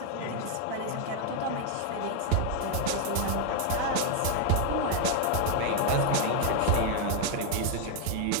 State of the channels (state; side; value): different; both; correlation 0.00